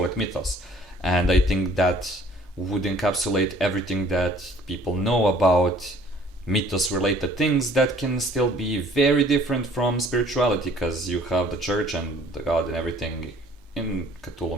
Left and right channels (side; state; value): both; normal; correlation 0.55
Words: it Mythos. And I think that would encapsulate everything that people know about mythos related things that can still be very different from spirituality, because you have the church and the god and everything in Cthulhu